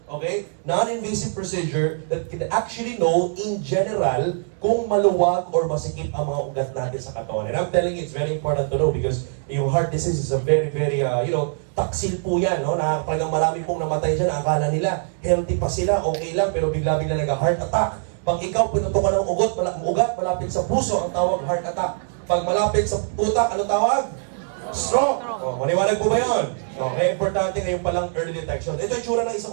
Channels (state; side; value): silent; left; 64 dB below the other